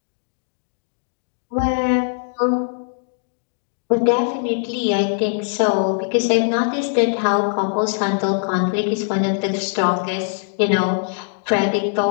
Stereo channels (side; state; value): right; silent; digital silence